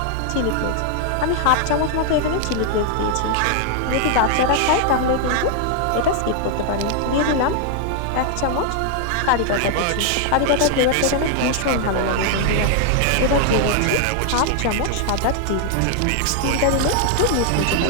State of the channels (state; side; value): different; both; correlation 0.00